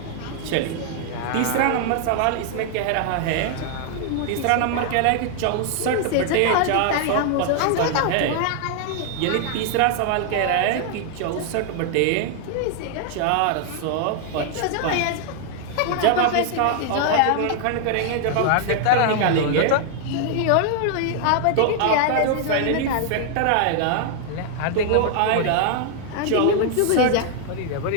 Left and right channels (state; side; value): different; both; correlation 0.00